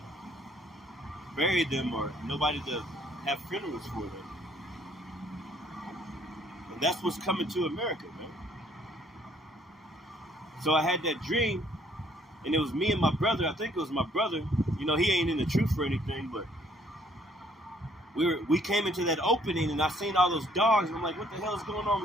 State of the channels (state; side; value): normal; both; correlation 0.63